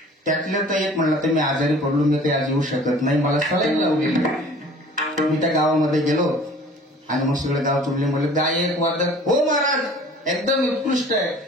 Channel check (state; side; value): normal; both; correlation 0.48